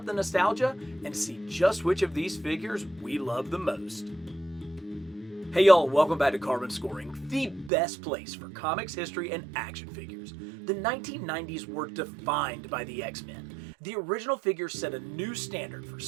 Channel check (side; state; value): left; drops out; at 7.7 s